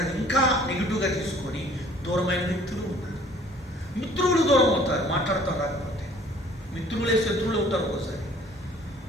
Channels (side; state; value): both; normal; correlation 0.54